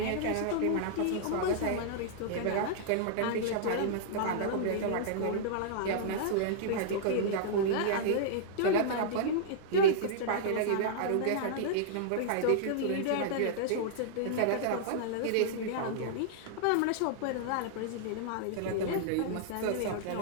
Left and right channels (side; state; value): both; different; correlation -0.02